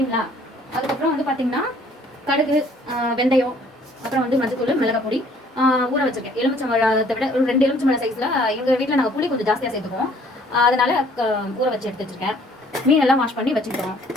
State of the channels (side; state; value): both; normal; correlation 0.59